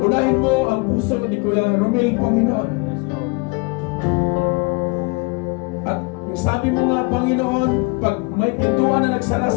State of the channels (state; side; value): quieter; right; 29.5 dB